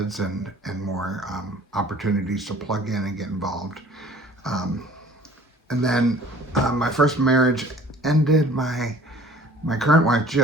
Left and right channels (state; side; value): normal; both; correlation 0.50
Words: and more opportunities to plug in and get involved. Um, and then my first marriage ended. My current wife